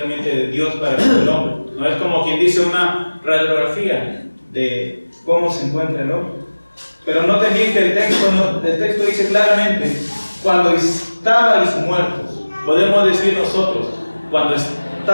de Dios para el hombre, ¿no? Es como quien dice una radiografía de cómo se encuentra el hombre. Pero noten bien que el texto dice claramente, cuando estabais muertos, podemos decir nosotros, cuando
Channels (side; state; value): both; inverted; correlation -1.00